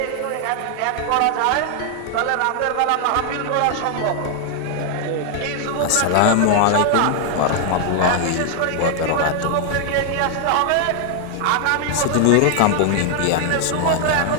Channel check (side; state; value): both; different; correlation 0.00